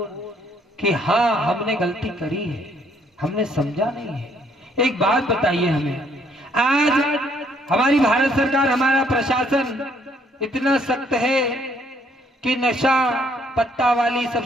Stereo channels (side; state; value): both; normal; correlation 0.67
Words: कि हाँ हमने गलती करी है, हमने समझा नहीं है। एक बात बताइए हमें, आज हमारी भारत सरकार, हमारा प्रशासन इतना सख्त है कि नशा पत्ता वाली सब